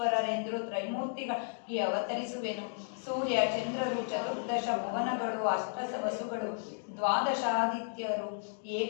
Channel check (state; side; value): silent; right; digital silence